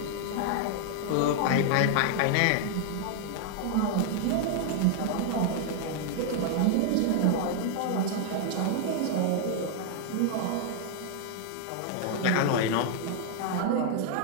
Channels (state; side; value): different; both; correlation 0.00